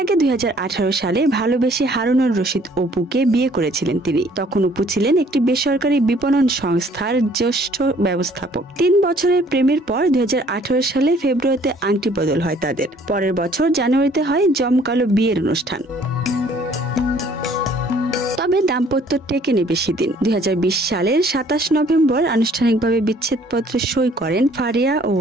আগে 2018 সালে ভালোবেসে হারুনুর রশিদ অপুকে বিয়ে করেছিলেন তিনি। তখন অপু ছিলেন একটি বেসরকারি বিপণন সংস্থার জ্যেষ্ঠ ব্যবস্থাপক। 3 বছরের প্রেমের পর 2018 সালে ফেব্রুয়ারিতে আংটি বদল হয় তাদের। পরের বছর জানুয়ারিতে হয় জমকালো বিয়ের অনুষ্ঠান। তবে দাম্পত্য টেকেনি বেশি দিন। 2020 সালের 27 নভেম্বর আনুষ্ঠানিকভাবে বিচ্ছেদপত্রে সই করেন ফারিয়া ও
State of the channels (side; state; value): both; normal; correlation 0.59